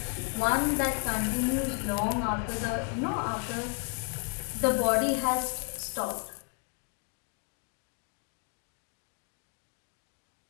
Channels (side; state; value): right; quieter; 35.4 dB